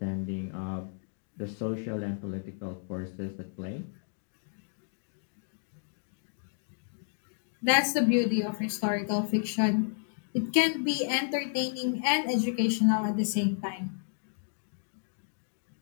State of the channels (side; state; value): right; silent; digital silence